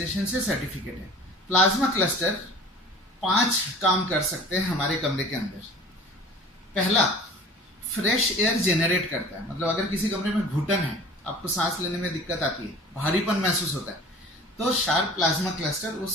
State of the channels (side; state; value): both; normal; correlation 0.43